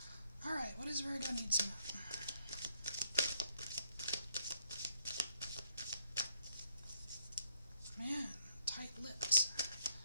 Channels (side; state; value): both; inverted; correlation -0.69